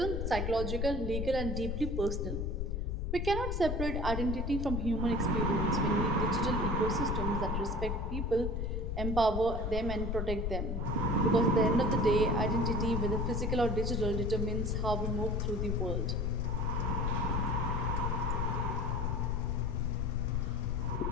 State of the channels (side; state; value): left; noise; rumble, 1 dB below the sound